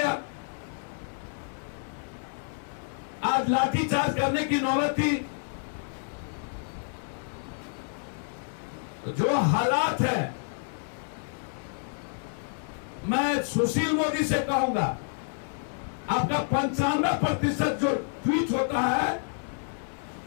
आज लाठीचार्ज करने की नौबत थी। जो हालात है, मैं सुशील मोदी से कहूंगा, आपका 95% जो ट्वीट होता है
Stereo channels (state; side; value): silent; right; 59 dB below the other